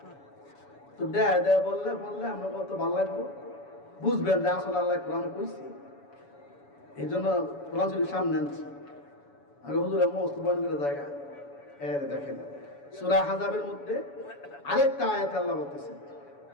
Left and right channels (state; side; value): late; right; 7.1 ms